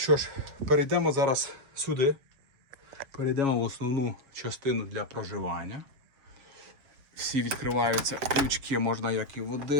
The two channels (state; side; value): late; left; 7.1 ms